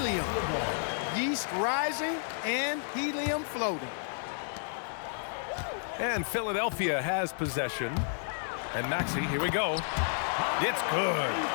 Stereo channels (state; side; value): silent; right; digital silence